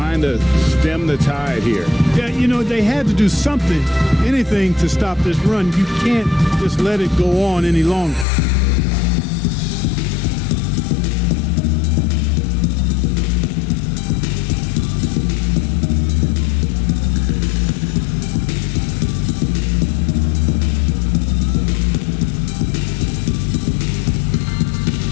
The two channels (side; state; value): right; drops out; at 8.2 s